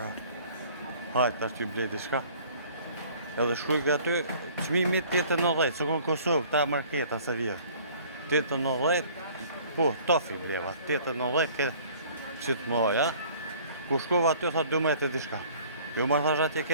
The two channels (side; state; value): both; inverted; correlation -0.52